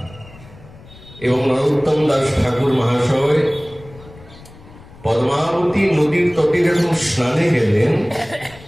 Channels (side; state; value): left; noise; rumble, 21 dB below the sound